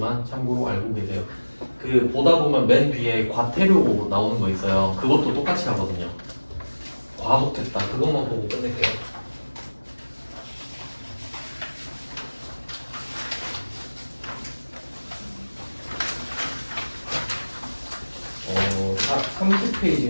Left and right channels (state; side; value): inverted; both; correlation -1.00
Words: 참고로 알고 계세요. 그 보다 보면 맨 뒤에 과태료 나오는 거 있어요. 그것도 똑같이 하거든요. 과속했다. 그것만 보고 끝낼게요. 다